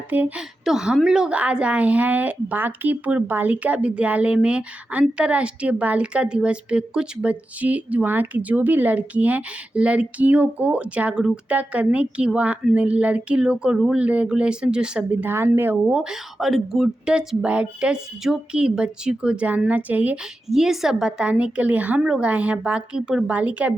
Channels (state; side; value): normal; both; correlation 0.91